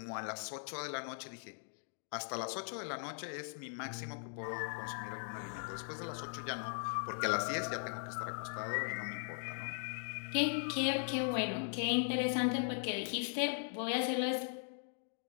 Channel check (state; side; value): silent; right; digital silence